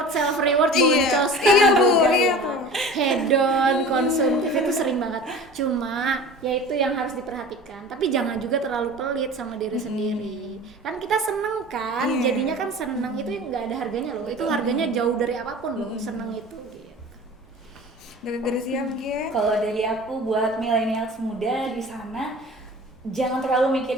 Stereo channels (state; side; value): normal; both; correlation 0.39